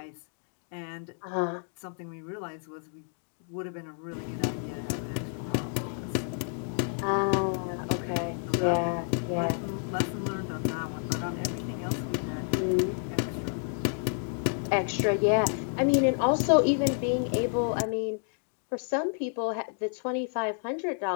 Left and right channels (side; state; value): right; silent; 58 dB below the other